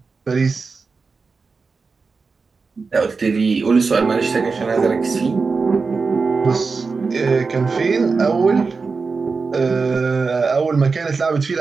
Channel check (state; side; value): quieter; left; 4.6 dB